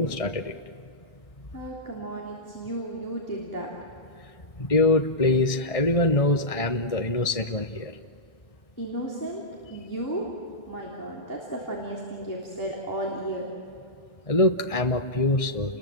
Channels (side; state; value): right; late; 1.6 ms